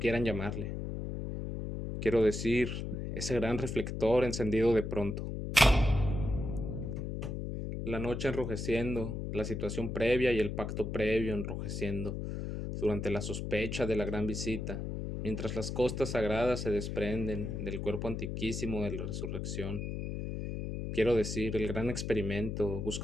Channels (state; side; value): noise; left; hum, 4 dB below the sound